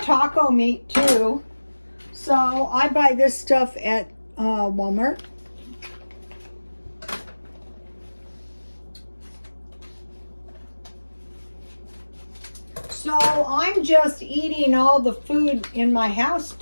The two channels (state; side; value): inverted; both; correlation -1.00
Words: meat too. So I buy this stuff at Walmart. So I'm just eating all the food in my house